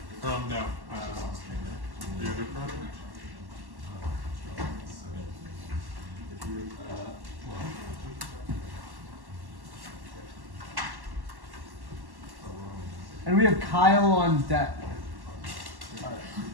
No. The other project? And we have Kyle on deck.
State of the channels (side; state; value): left; late; 1.1 ms